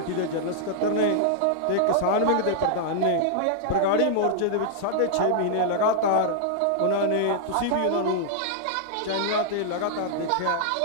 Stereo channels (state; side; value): different; both; correlation -0.01